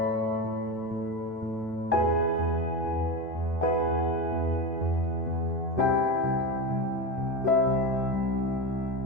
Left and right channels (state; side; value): normal; both; correlation 0.19